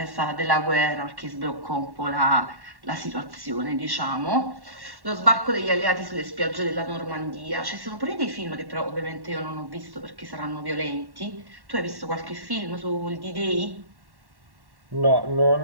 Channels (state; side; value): late; left; 1.1 ms